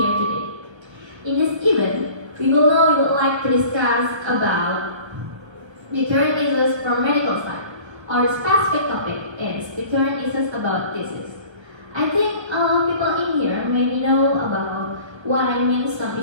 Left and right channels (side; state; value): left; late; 1.3 ms